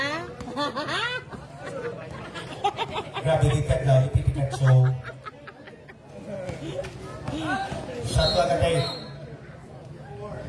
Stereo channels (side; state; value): both; identical; correlation 1.00